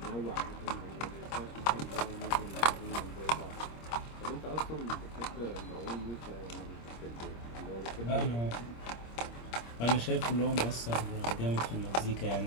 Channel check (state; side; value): late; right; 26 ms